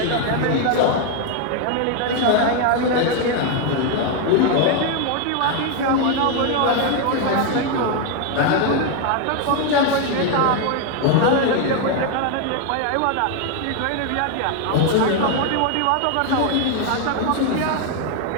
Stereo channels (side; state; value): both; different; correlation 0.01